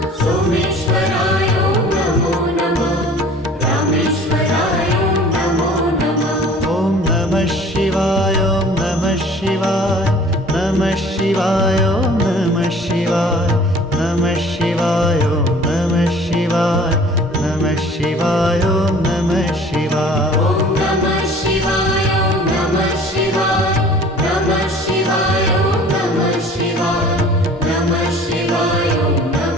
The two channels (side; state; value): both; normal; correlation 0.48